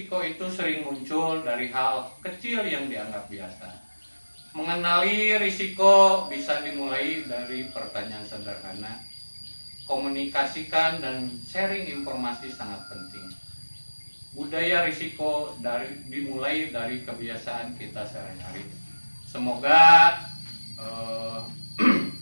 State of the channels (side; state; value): both; inverted; correlation -1.00